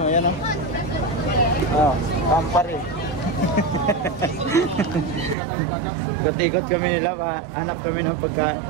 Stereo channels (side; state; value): left; drops out; at 5.4 s